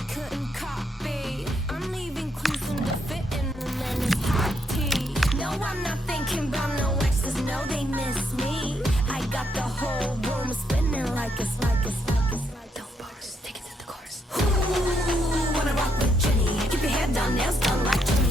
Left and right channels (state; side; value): normal; both; correlation 0.76